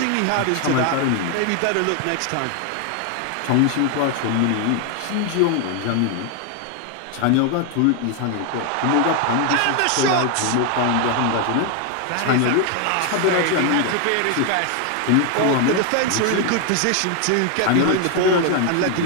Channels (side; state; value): both; different; correlation 0.01